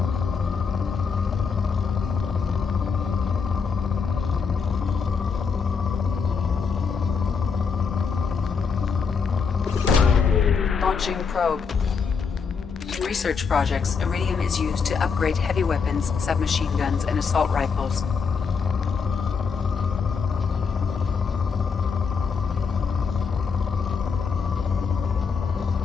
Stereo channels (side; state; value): right; quieter; 5.7 dB